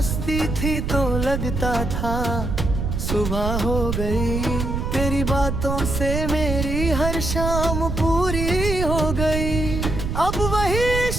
थी तो लगता था सुबह हो गई, तेरी बातों से मेरी हर शाम पूरी हो गई। अब वही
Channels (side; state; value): right; noise; rumble, 2 dB below the sound